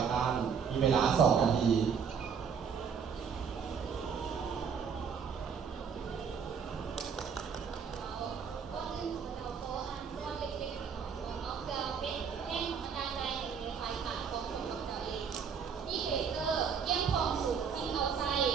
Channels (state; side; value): quieter; left; 6.7 dB